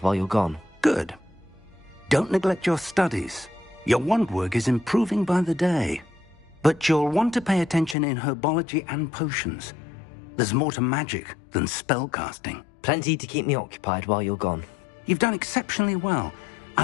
while you're gone. Good. Don't neglect your studies. Your wand work is improving by the day. But you'll want to pay attention in herbology and potions. There's more to magic than spellcasting. Plenty to keep me occupied while you're gone. You've done exceptionally well. I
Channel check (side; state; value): right; drops out; at 8.0 s